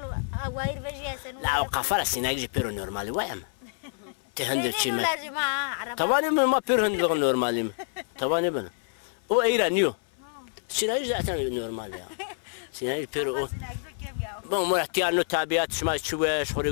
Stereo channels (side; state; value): right; silent; 60 dB below the other